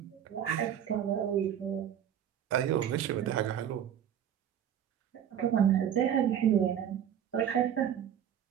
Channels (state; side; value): quieter; left; 9.6 dB